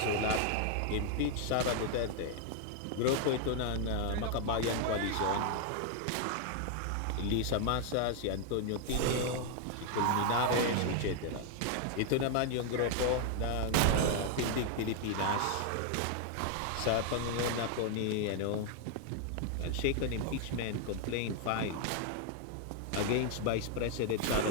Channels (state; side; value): different; both; correlation 0.00